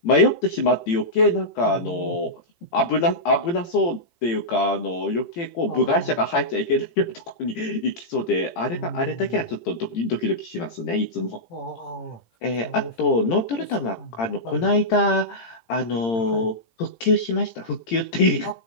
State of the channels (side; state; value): right; late; 18 ms